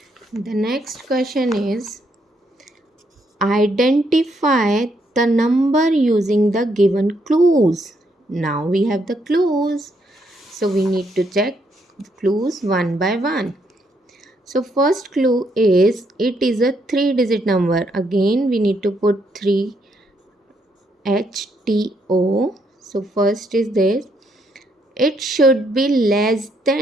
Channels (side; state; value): both; normal; correlation 0.74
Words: identify the number using the given clues. Now we have the clues. So we need to check clues one by one. So first clue is, it is a 3-digit number. Again we need to put 3 HTO. So first is this. It should be less